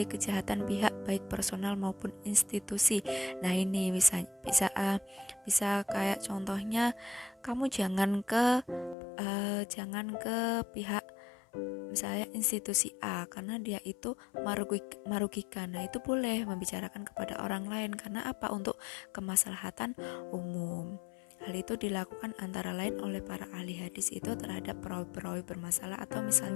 kejahatan pihak baik personal maupun institusi. Nah, ini bisa kayak contohnya, kamu jangan ke pihak misalnya institusi A karena dia itu merugikan. Nah, itu boleh membicarakan kepada orang lain karena apa? Untuk kemaslahatan umum. Hal itu dilakukan antara lain oleh para ahli hadis itu terhadap perawi-perawi bermasalah, atau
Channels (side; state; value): right; drops out; at 9.0 s